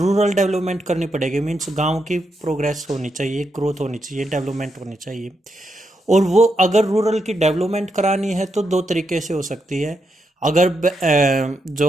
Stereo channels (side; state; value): both; normal; correlation 0.82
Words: डेवलपमेंट करनी पड़ेगी। मीन्स गांव की प्रोग्रेस होनी चाहिए, ग्रोथ होनी चाहिए, डेवलपमेंट होनी चाहिए। और वो अगर रूरल की डेवलपमेंट करानी है तो दो तरीके से हो सकती है। अगर